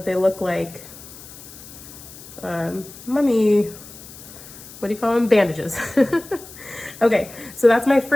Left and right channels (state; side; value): noise; left; hiss, 17 dB below the sound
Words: they look like mummy, what do you call them? Bandages. Okay, so that's my